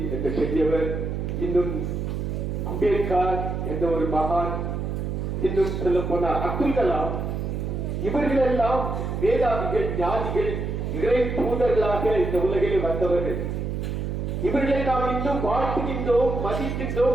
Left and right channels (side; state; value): right; noise; hum, 3 dB below the sound